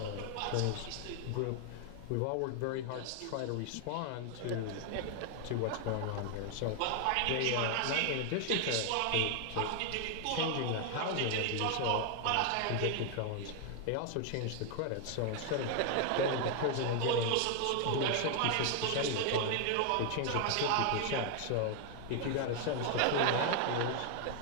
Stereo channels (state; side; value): different; both; correlation 0.00